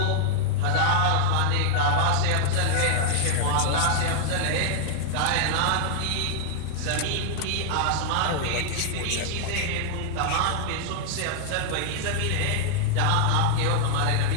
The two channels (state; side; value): different; both; correlation 0.00